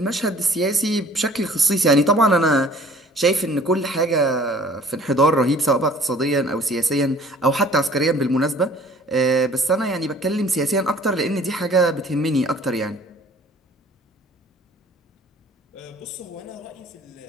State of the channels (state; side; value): normal; both; correlation 0.52